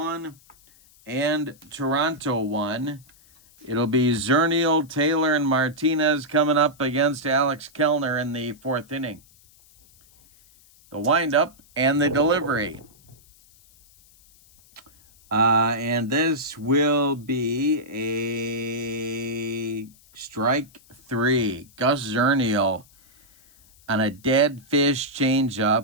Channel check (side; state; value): left; noise; hiss, 28 dB below the sound